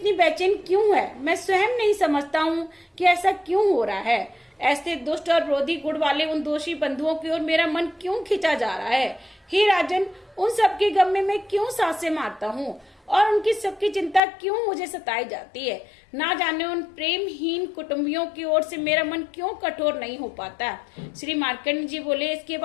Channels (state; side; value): drops out; right; at 14.2 s